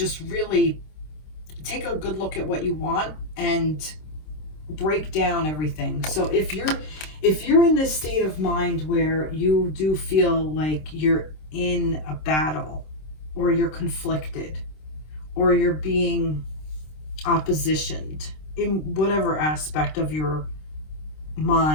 really take a good look at what you want and break down everything. So if you're in this state of mind where you do feel like you're in a battle, or you're conflicted, or you're being oppositioned in whatever aspect of your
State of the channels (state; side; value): late; right; 26 ms